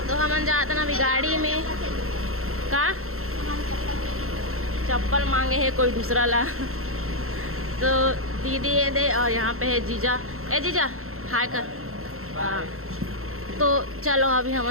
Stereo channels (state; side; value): late; left; 0.62 ms